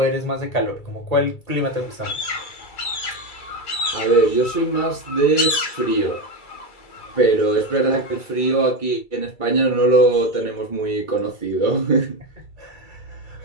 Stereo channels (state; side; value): late; right; 2.3 ms